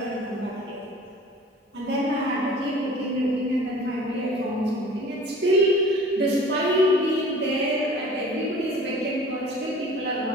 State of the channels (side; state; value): both; normal; correlation 0.45